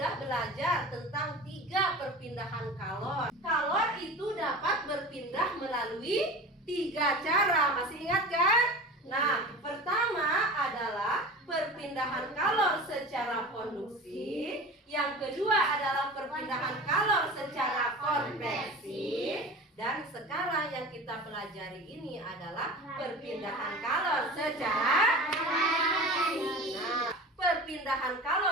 belajar tentang 3 perpindahan kalor. Kalor itu dapat berpindah melalui 3 cara, masih ingat kan? Nah, pertama adalah perpindahan kalor secara konduksi. Yang kedua adalah perpindahan kalor secara konveksi. Dan sekarang yang kita pelajari ini adalah perpindahan kalor secara radiasi. Nah, perpindahan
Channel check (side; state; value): both; normal; correlation 0.34